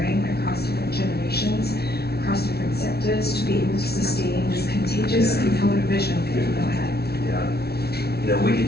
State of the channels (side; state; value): right; late; 0.46 ms